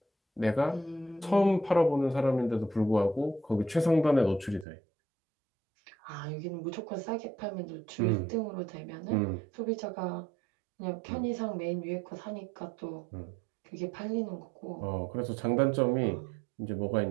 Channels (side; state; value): left; drops out; at 4.7 s